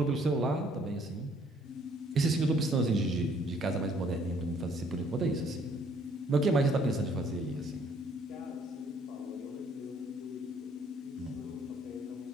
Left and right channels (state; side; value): normal; both; correlation 0.63